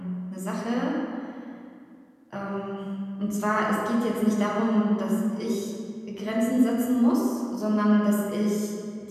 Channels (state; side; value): identical; both; correlation 1.00